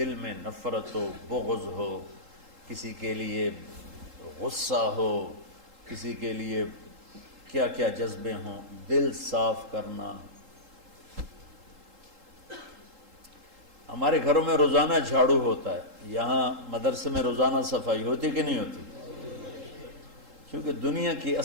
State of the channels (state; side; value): late; left; 3.8 ms